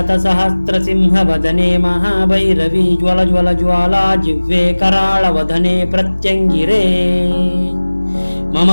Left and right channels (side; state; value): both; inverted; correlation -1.00